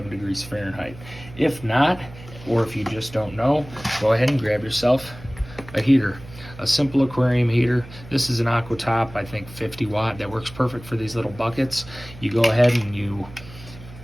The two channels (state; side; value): noise; right; hum, 17 dB below the sound